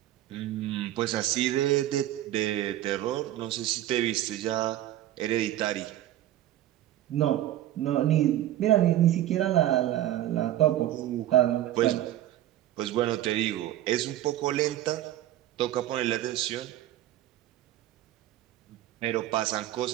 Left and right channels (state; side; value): quieter; left; 13.4 dB